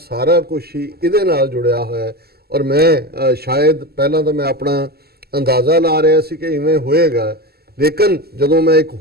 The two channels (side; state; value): left; late; 0.46 ms